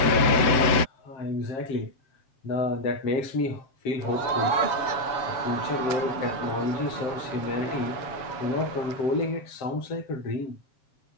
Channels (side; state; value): right; late; 7.8 ms